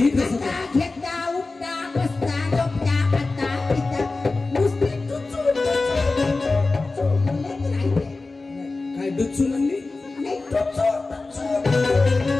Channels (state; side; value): quieter; right; 3.5 dB